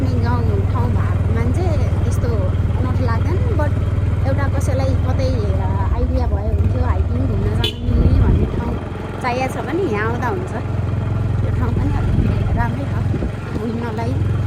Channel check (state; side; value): identical; both; correlation 1.00